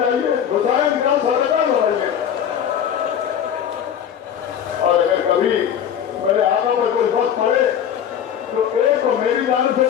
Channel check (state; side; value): quieter; right; 9.0 dB